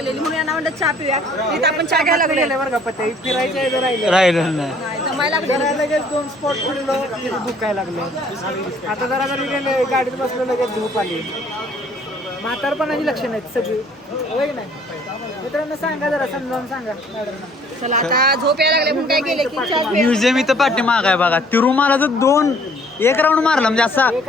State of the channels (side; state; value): both; normal; correlation 0.58